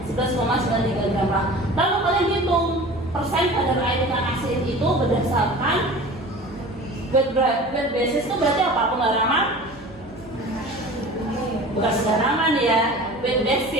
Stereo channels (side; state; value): right; noise; hum, 23 dB below the sound